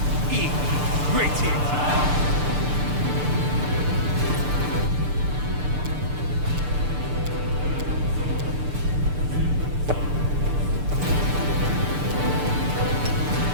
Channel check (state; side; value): late; left; 6.8 ms